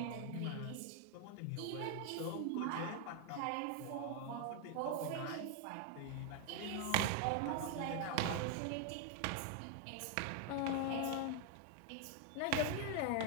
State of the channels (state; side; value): different; both; correlation 0.01